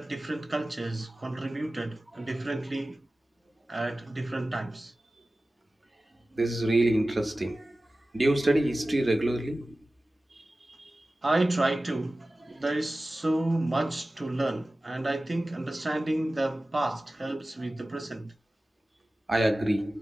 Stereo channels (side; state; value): both; normal; correlation 0.96